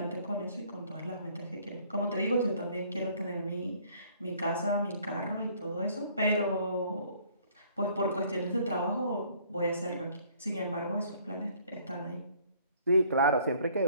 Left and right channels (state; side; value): inverted; both; correlation -0.59